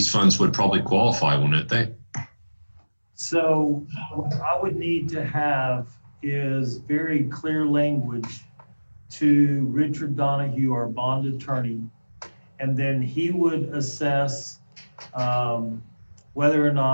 funds would probably qualify, wouldn't they? So what I would need to have is very clear language to Richard Donahue, our bond attorney, and then he would assess whether or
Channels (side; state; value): both; inverted; correlation -1.00